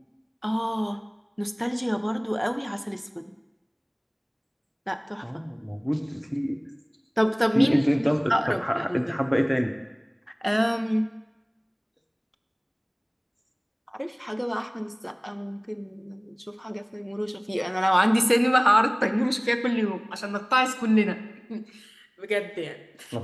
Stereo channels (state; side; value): identical; both; correlation 1.00